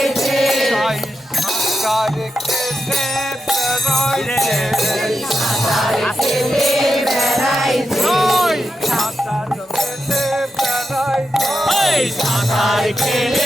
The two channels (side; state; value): both; normal; correlation 0.86